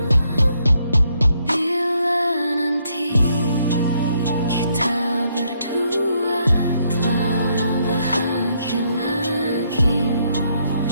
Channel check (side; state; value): both; inverted; correlation -0.73